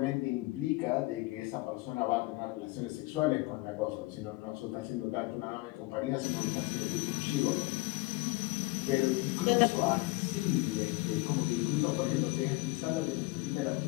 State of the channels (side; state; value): right; quieter; 22.3 dB